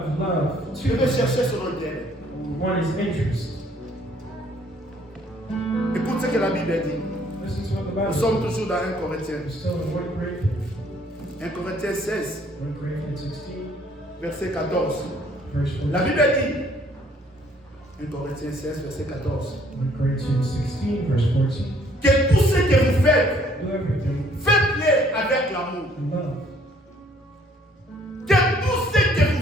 love je vais chercher son intérêt. one is interest. Écoute ce que la Bible dit. Listen to what the Nous Bible sommes says. toujours dans 1 Corinthiens. We're still in 1 Corinthians. 1 Corinthiens 16, 1 Corinthians 16, verset 14. verse 14. La Bible dit, 1 Corinthiens 16, verset 14, 1 Corinthians 16, verse 14. que tout ce que vous faites, Do everything faites-le avec l'amour. in love. Que tout ce que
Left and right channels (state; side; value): normal; both; correlation 0.62